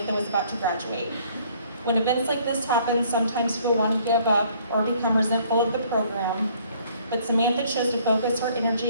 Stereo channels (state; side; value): inverted; both; correlation -0.60